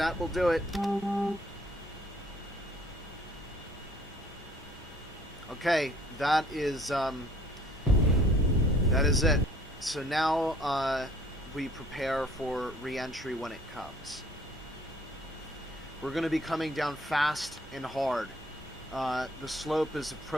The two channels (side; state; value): both; normal; correlation 0.57